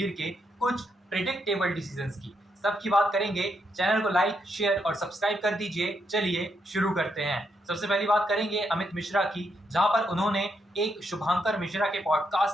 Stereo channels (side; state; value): both; normal; correlation 0.79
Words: के कुछ प्रिडिक्टेबल डिसीजंस की, सबकी बात करेंगे। चैनल को लाइक, शेयर और सब्सक्राइब कर दीजिए। चलिए शुरू करते हैं। सबसे पहली बात करेंगे अमित मिश्रा की, जहां पर उन्होंने एक शुभांकर मिश्रा के